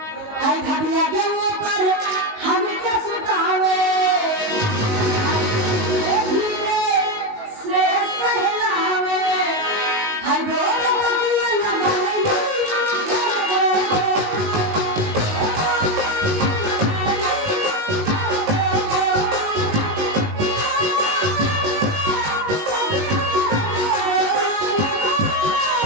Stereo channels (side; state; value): left; late; 19 ms